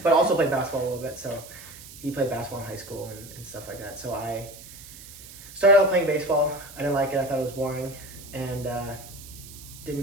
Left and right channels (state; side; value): noise; right; hiss, 16 dB below the sound